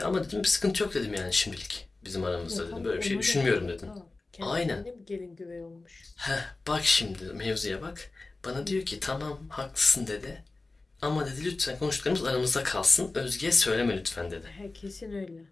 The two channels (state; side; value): quieter; right; 3.4 dB